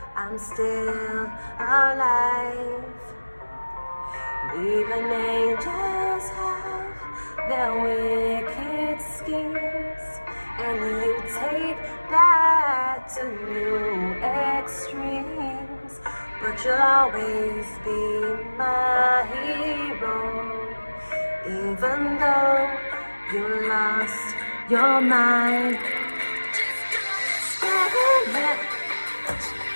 I'm still alive. Even angels have their wicked schemes, and you take that to new extremes. But you'll always be my hero, even though you lost your mind.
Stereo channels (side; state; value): both; inverted; correlation -1.00